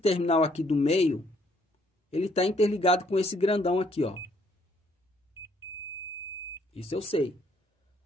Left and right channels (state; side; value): normal; both; correlation 0.67